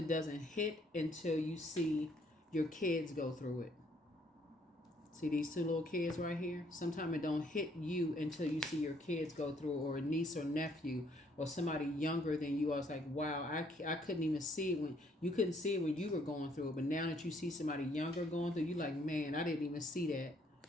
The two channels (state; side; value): normal; both; correlation 0.66